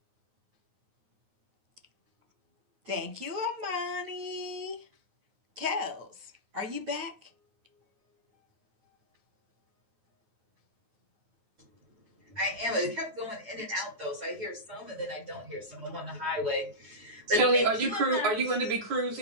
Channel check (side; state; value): left; late; 9.5 ms